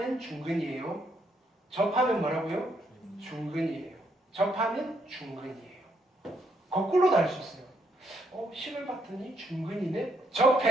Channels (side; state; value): both; normal; correlation 0.74